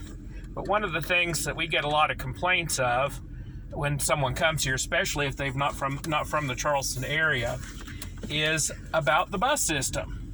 But one of the things that we get a lot of complaints of when someone comes here, especially if they've not from the Charleston area, is about the bus system.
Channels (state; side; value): identical; both; correlation 1.00